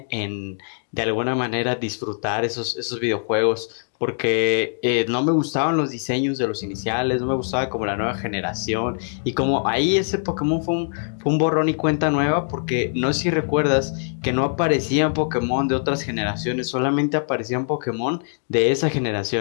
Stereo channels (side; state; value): right; silent; digital silence